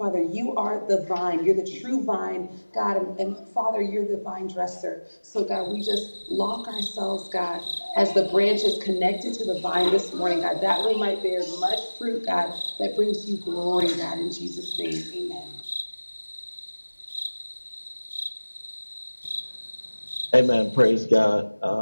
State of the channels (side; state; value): both; inverted; correlation -1.00